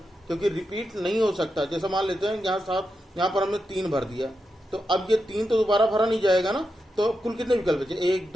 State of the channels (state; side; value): normal; both; correlation 0.87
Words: क्योंकि रिपीट नहीं हो सकता। जैसे मान लेते हैं यहाँ 7, यहाँ पर हमने 3 भर दिया, तो अब ये 3 तो दोबारा भरा नहीं जाएगा ना। तो कुल कितने विकल्प बचे? 1